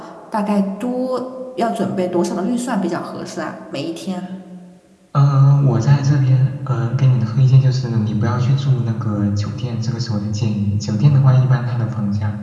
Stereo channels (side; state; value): both; identical; correlation 1.00